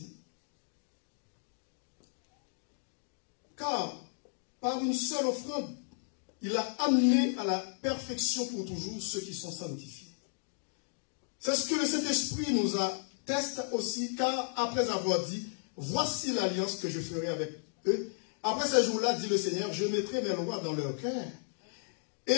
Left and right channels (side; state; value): right; silent; 55 dB below the other